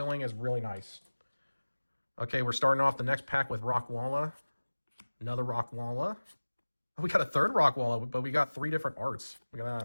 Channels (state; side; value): inverted; both; correlation -1.00